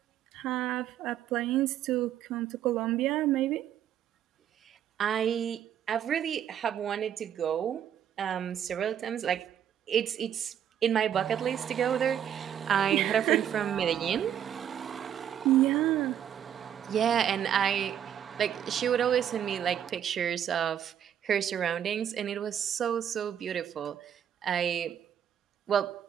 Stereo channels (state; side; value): quieter; left; 9.6 dB